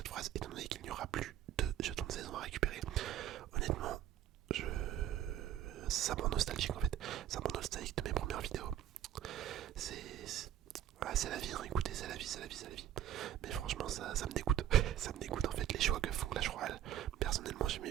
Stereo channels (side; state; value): left; quieter; 11.6 dB